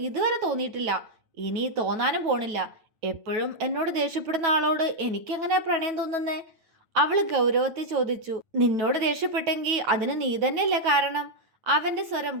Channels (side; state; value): left; late; 9.2 ms